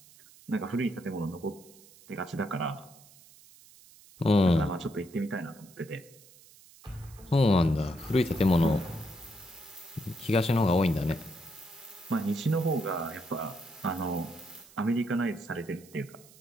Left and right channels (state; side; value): noise; right; hiss, 24 dB below the sound